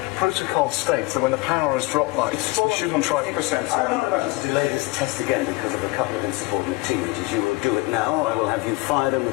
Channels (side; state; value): right; quieter; 22.4 dB